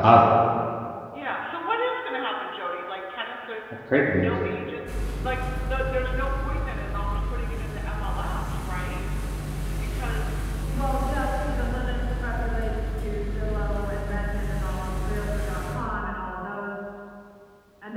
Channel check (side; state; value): both; identical; correlation 1.00